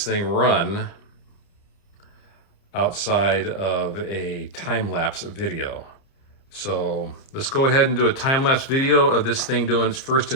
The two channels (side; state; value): right; late; 30 ms